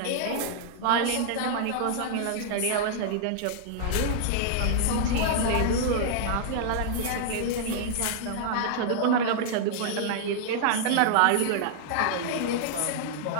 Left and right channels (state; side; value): different; both; correlation -0.01